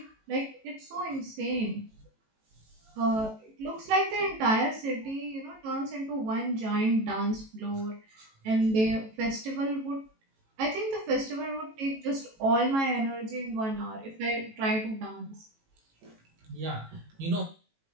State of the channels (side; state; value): left; late; 18 ms